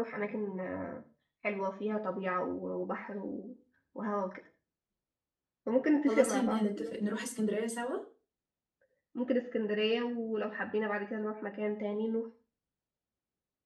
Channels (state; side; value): identical; both; correlation 1.00